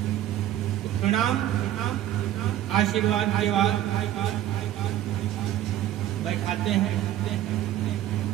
प्रणाम आशीर्वाद के बाद बैठाते हैं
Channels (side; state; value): left; quieter; 12.7 dB